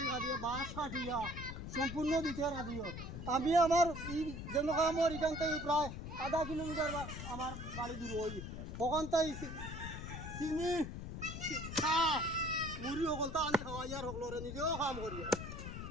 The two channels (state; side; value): noise; left; rumble, 7 dB below the sound